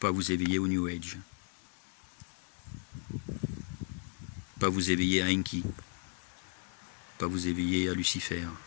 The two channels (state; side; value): silent; right; 54 dB below the other